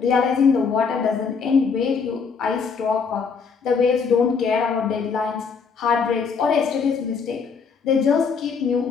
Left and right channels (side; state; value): right; quieter; 5.6 dB